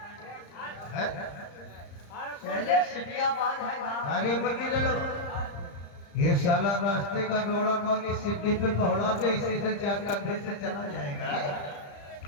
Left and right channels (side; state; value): right; late; 35 ms